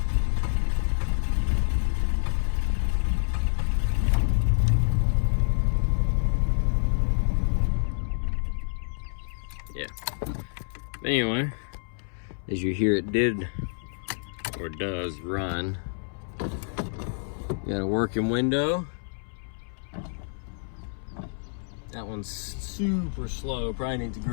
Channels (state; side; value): silent; right; 60 dB below the other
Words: Yeah. Anyway, as you hear, it did or does run. Got a working window. That one's super slow, probably needs